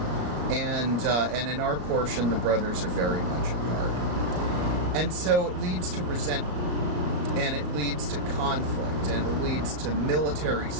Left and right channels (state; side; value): late; left; 33 ms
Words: And in our portion, the brothers are very much apart. And so it leads to resentment. And it leads to conflict, and it leads to military